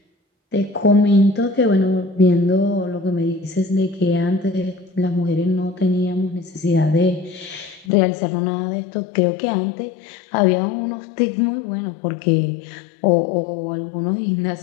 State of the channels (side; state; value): right; drops out; at 7.9 s